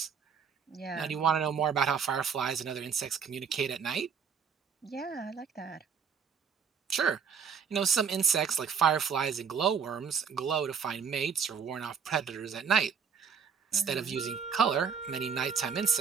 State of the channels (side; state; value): left; quieter; 6.6 dB